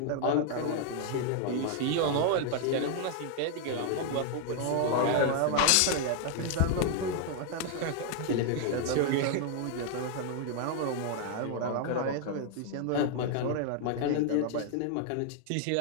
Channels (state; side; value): different; both; correlation 0.00